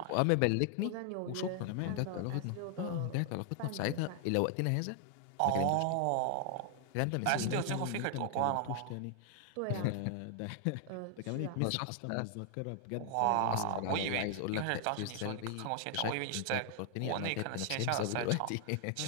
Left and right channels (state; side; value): different; both; correlation 0.00